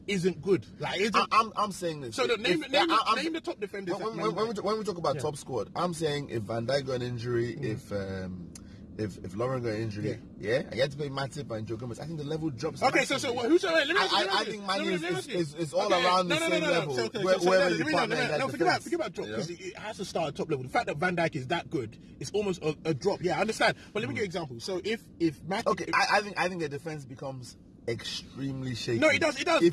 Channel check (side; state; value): both; identical; correlation 1.00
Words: isn't good. I'm saying this. So name the top defenders. When we talk about top squad, I'm saying if Van Dijk got an injury, if Lovren got an injury, and you had to play Matip and Joe Gomez, I think the level drops. Okay, so who's I think Man is all around the same level. Whoever you partner, forget about drop because it has to start at top level. The fact that Van Dijk is that good, it's almost a drop. Yeah, I understand. But let me give you an example. So if Matip, okay, I think the defense becomes extremely shaky. No, it does.